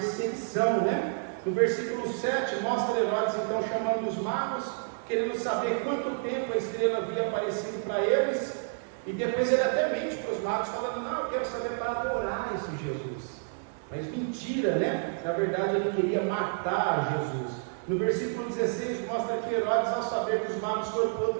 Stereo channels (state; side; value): silent; left; digital silence